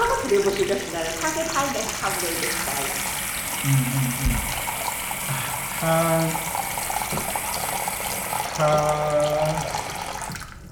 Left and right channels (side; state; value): both; identical; correlation 1.00